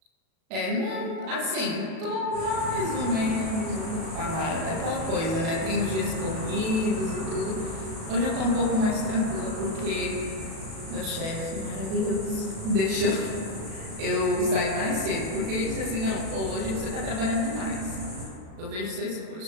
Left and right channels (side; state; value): left; late; 37 ms